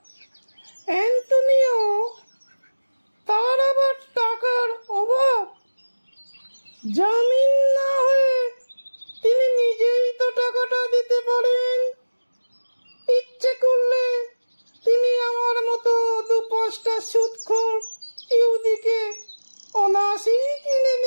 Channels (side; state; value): both; inverted; correlation -1.00